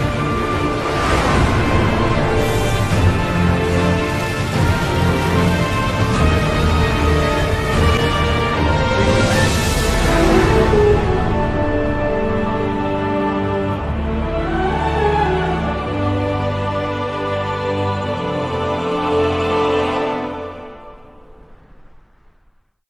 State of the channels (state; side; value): identical; both; correlation 1.00